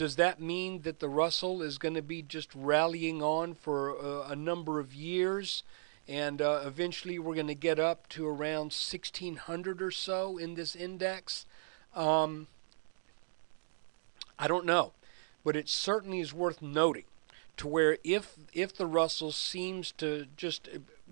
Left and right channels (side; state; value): left; silent; digital silence